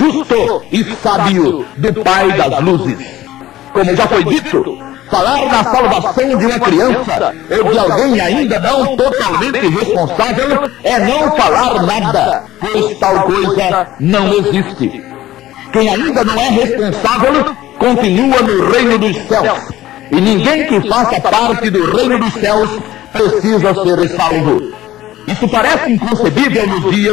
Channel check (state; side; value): quieter; right; 14.7 dB